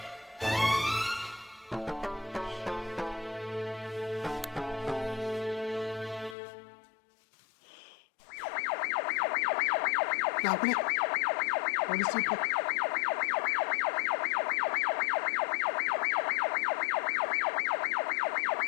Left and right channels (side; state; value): right; drops out; at 6.4 s